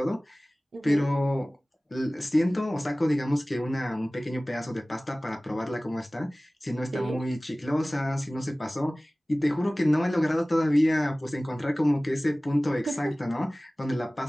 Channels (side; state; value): both; normal; correlation 0.98